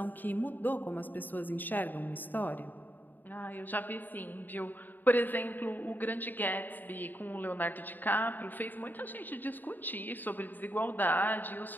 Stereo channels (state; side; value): late; right; 0.089 ms